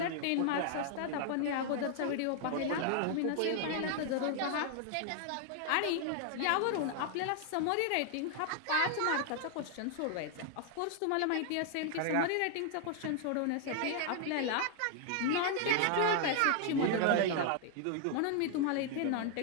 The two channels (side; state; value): both; different; correlation 0.00